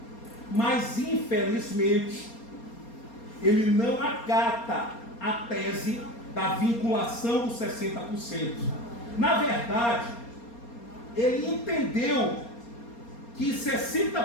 Mas, infelizmente, ele não acata a tese da vinculação dos 60%. Na verdade, ele entendeu que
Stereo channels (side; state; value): right; late; 4.3 ms